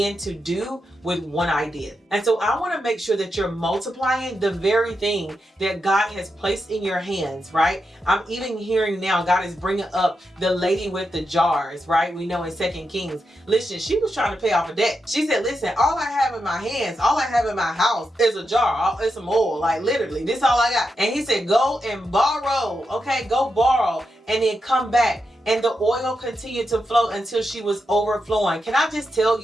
to do with one idea. And so I want to make sure that you're multiplying the very thing that God has placed in your hands, right? I'm even hearing now God is bringing up the lady with the jars, right? We know in 2 Kings. Listen, she was trying to pay off a debt. She said, listen, all I have in my hands, all I have in my house is a jar. It's some oil, like literally, this is all I got. And he said, go and borrow, okay? Go borrow and then come back. And the oil continued to flow until she was overflowing. Can I just tell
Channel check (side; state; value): both; normal; correlation 0.86